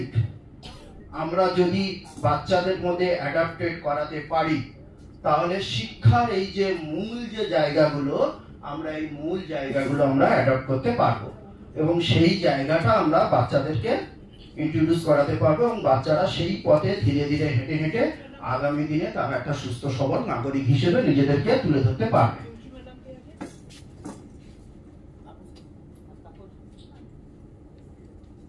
আমরা যদি বাচ্চাদের মধ্যে অ্যাডাপ্টেড করাতে পারি, তাহলে শিক্ষার এই যে মূল যে জায়গাগুলো আমরা এই মূল জায়গাগুলো আমরা অ্যাডপ্ট করতে পারবো, এবং সেই জায়গাটা আমরা বাচ্চাদেরকে ইন্ট্রোডিউস করাতে পারবো, এবং বাচ্চারা সেই পথে ধীরে ধীরে হেঁটে হেঁটে আগামী দিনে তারা একটা সুস্থ সবল নাগরিক হিসেবে নিজেদেরকে তুলে ধরতে পারবে।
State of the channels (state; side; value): identical; both; correlation 1.00